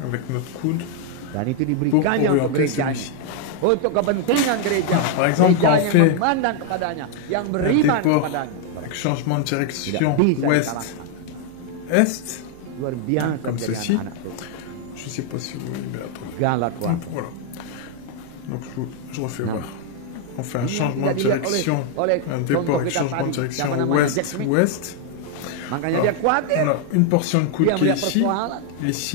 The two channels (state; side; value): different; both; correlation 0.00